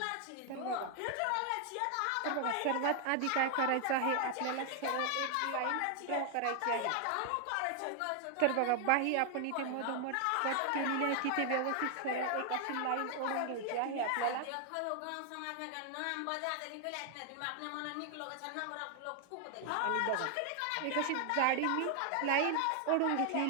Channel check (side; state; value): both; different; correlation 0.00